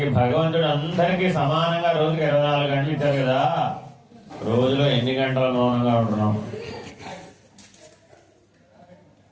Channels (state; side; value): identical; both; correlation 1.00